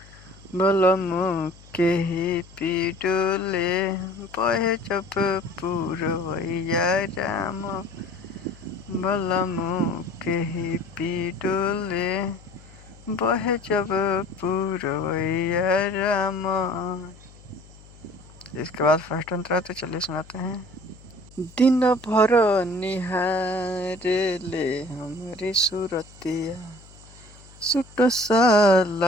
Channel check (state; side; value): noise; left; hum, 22 dB below the sound